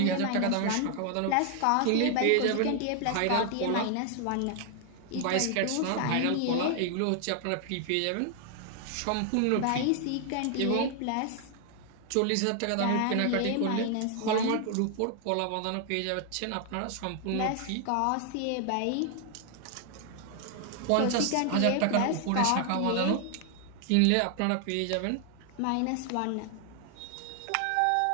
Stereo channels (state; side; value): different; both; correlation 0.00